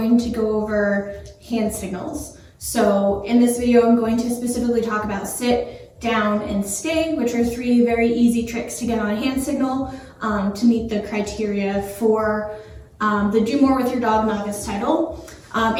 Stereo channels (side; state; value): both; identical; correlation 1.00